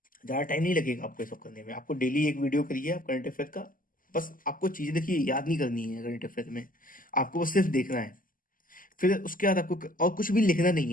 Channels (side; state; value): right; late; 0.41 ms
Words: ज़्यादा टाइम नहीं लगेगा आपको ये सब करने में। आपको डेली एक वीडियो करिए आप करंट अफेयर का। बस आपको चीज़ें देखिए, याद नहीं करनी है करंट अफेयर में, आपको बस सिर्फ देखना है। फिर उसके बाद आपको और कुछ भी लिखना नहीं